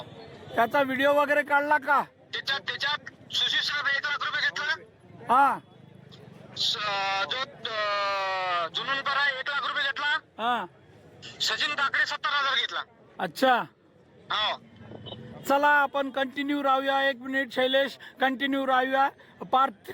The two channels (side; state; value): both; identical; correlation 1.00